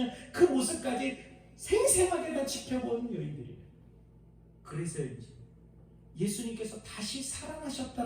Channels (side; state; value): both; identical; correlation 1.00